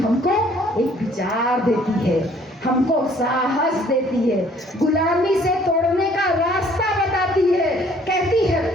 एक विचार देती है, हमको साहस देती है, गुलामी से तोड़ने का रास्ता बताती है। कहती है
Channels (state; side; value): normal; both; correlation 0.59